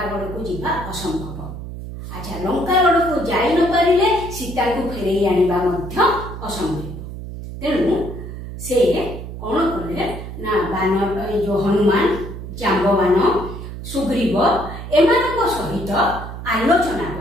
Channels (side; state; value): right; noise; hum, 9 dB below the sound